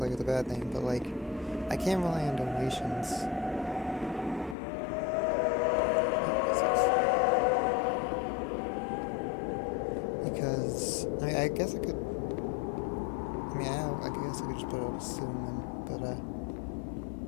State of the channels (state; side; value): drops out; right; at 4.5 s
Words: a bad thing, but I can't rely on donations. Because I guess I could. I guess I could just put it up soon, but